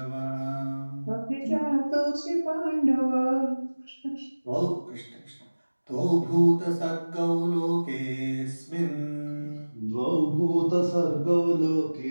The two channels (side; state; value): both; inverted; correlation -1.00